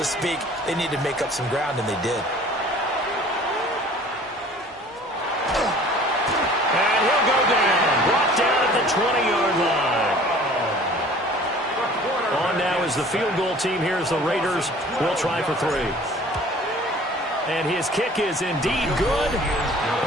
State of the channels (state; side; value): normal; both; correlation 0.49